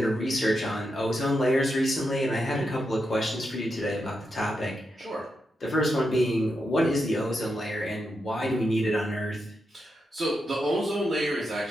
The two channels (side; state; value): both; normal; correlation 0.85